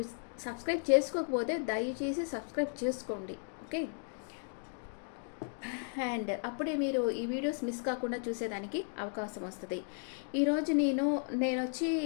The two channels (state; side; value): silent; right; 54 dB below the other